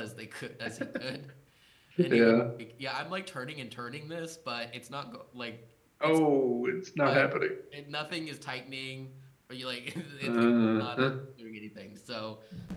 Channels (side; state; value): both; identical; correlation 1.00